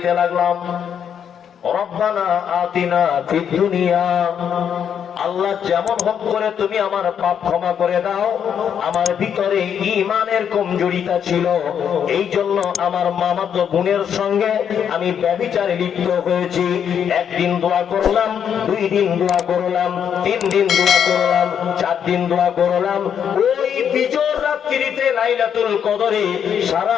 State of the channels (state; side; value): quieter; right; 8.3 dB